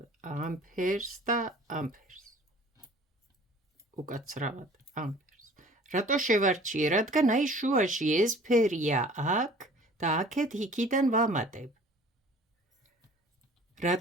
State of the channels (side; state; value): both; normal; correlation 0.49